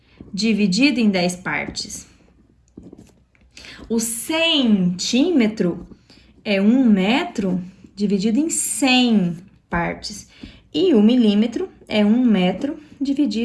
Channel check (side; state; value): both; identical; correlation 1.00